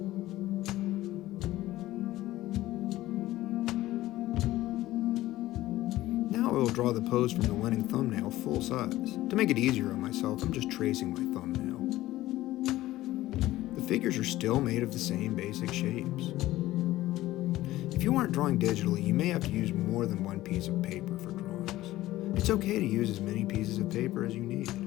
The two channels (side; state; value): right; quieter; 16.1 dB